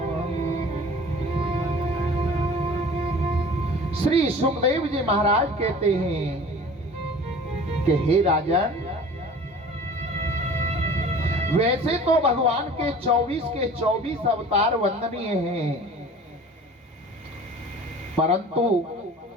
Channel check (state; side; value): normal; both; correlation 0.43